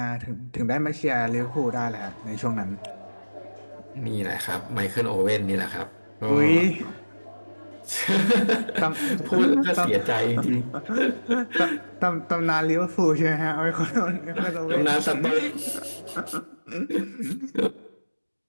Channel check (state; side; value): inverted; both; correlation -1.00